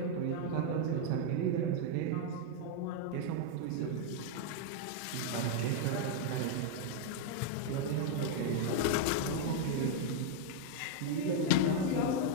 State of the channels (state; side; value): different; both; correlation 0.00